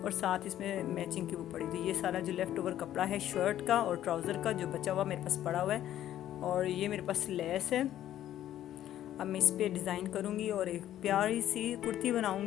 और साथ इसमें मैचिंग की वो पड़ी। तो ये सारा जो लेफ़्ट ओवर कपड़ा है शर्ट का और ट्राउज़र का जो बचा हुआ मेरे पास पड़ा हुआ है, और ये मेरे पास लेस है। अब मैं इस पर डिज़ाइन करूँगी और एक प्यारी सी कुर्ती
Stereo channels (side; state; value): right; quieter; 12.1 dB